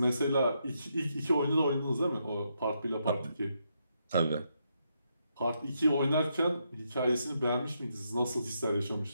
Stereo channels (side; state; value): both; inverted; correlation -0.79